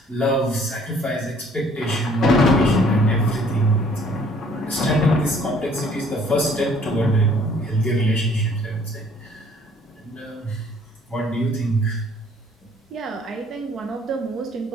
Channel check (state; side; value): normal; both; correlation 0.58